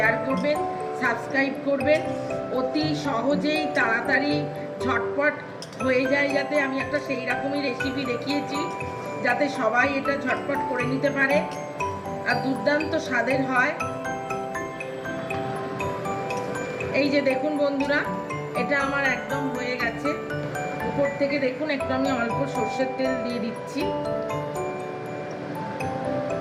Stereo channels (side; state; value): both; identical; correlation 1.00